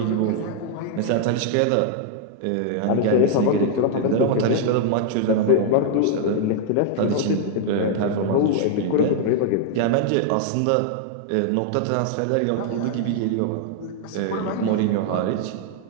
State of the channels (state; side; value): different; both; correlation -0.01